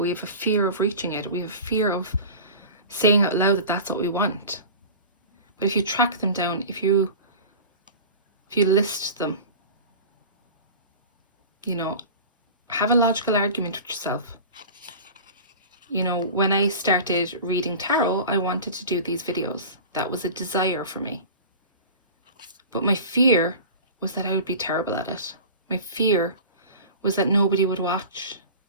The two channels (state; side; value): inverted; both; correlation -0.35